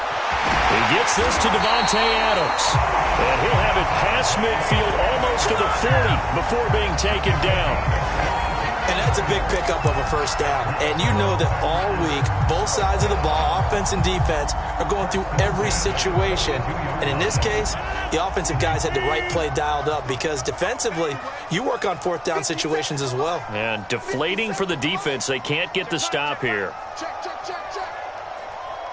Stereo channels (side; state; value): both; identical; correlation 1.00